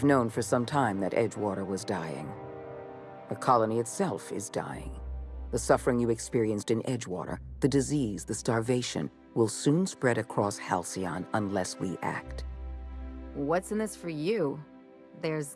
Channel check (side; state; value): both; identical; correlation 1.00